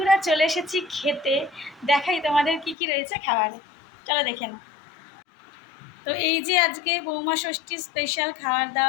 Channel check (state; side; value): drops out; right; at 2.8 s